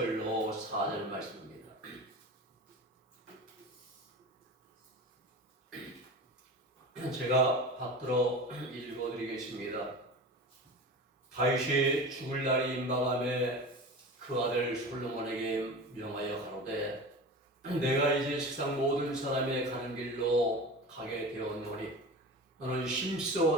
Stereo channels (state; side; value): normal; both; correlation 0.32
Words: 4절 말씀입니다. 제가 받들어 읽어드리겠습니다. 다윗이 죽을 날이 임박함에 그 아들 솔로몬에게 명하여 가로되 내가 이제 세상 모든 사람의 가는 길로 가게 되었노니 너는